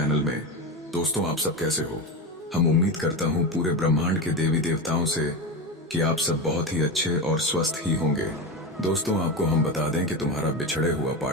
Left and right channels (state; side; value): normal; both; correlation 0.19